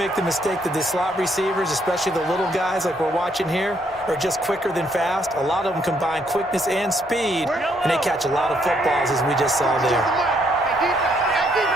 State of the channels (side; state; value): both; normal; correlation 0.71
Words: the mistake that the slot receivers, especially the little guys like we're watching here, are just quicker than fast. A lot of them combine quickness and speed, and they catch a lot of footballs, as we just saw there.